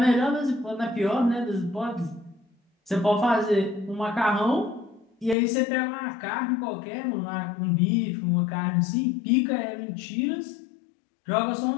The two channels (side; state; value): right; drops out; at 5.4 s